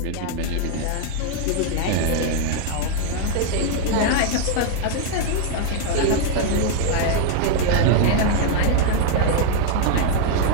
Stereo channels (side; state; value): both; different; correlation 0.00